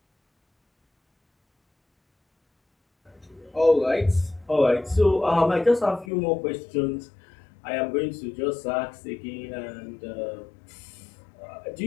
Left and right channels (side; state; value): right; drops out; at 6.1 s